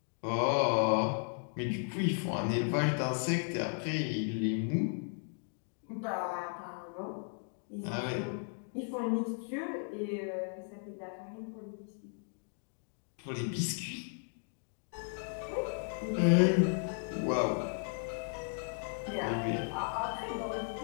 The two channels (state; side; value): silent; right; 54 dB below the other